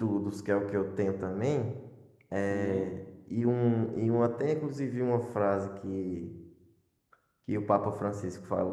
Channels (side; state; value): both; identical; correlation 1.00